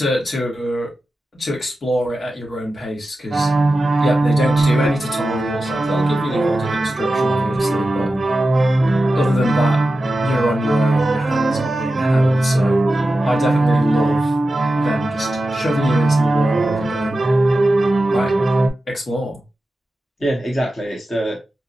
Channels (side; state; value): both; normal; correlation 0.93